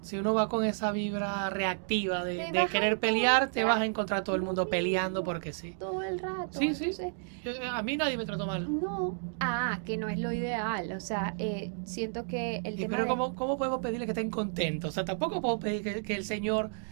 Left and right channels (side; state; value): left; silent; digital silence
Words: Si uno va con esa vibra reactiva te de vas a querer pelear, te vas a encontrar encontrar todo el lo mundo peleando mismo porque sí. todo el rato. Sí, sí. Entonces, A mí nadie me trató mal. no, que no es lo ideal. O sea, siento que el Y tema pero de, ¿cómo podemos pedirle que estén contentos? O sea, tampoco puedo pedir que el señor